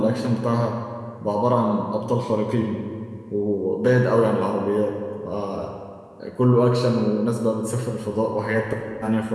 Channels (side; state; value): both; identical; correlation 1.00